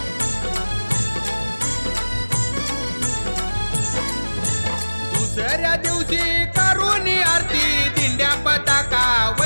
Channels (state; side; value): inverted; both; correlation -1.00